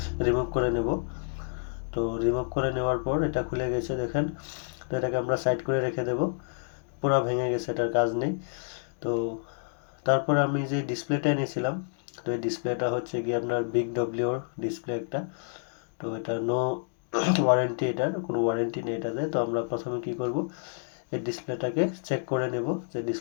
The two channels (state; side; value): silent; right; digital silence